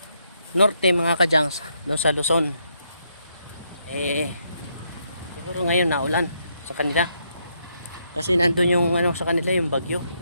norte mga kajangs, doon sa Luzon, siguro ngayon na ulan sa kanila kasi nandun yung ano sa kanila, yung bagyo.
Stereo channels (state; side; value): inverted; both; correlation -0.76